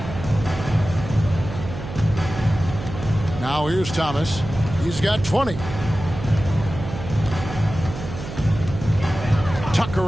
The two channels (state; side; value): noise; right; hum, 9 dB below the sound